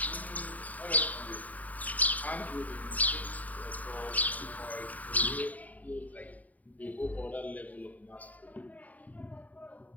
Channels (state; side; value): late; right; 0.073 ms